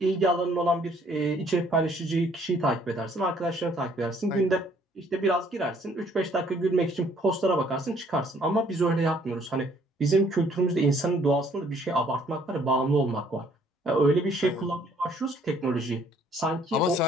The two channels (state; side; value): normal; both; correlation 0.62